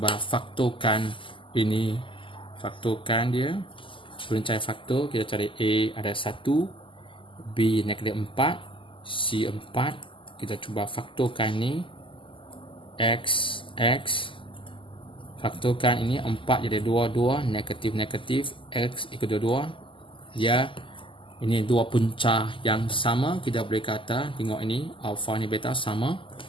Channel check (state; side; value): late; right; 0.25 ms